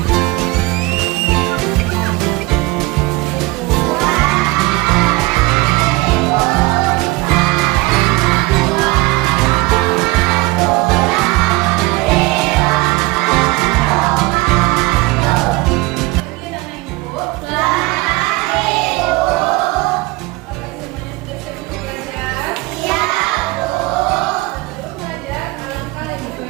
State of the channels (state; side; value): quieter; left; 22.5 dB